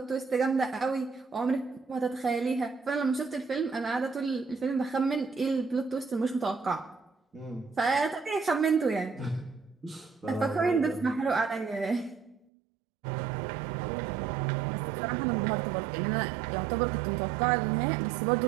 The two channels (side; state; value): left; drops out; at 12.5 s